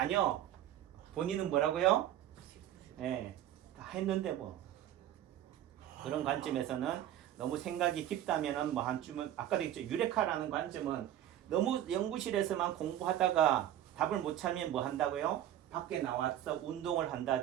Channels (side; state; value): left; quieter; 12.0 dB